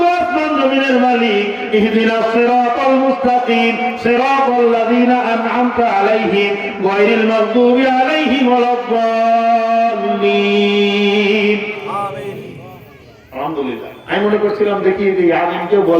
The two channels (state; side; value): identical; both; correlation 1.00